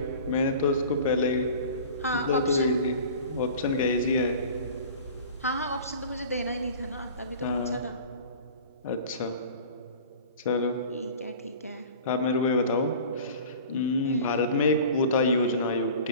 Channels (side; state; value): both; inverted; correlation -0.41